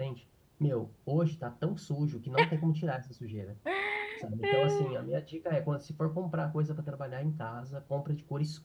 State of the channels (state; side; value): identical; both; correlation 1.00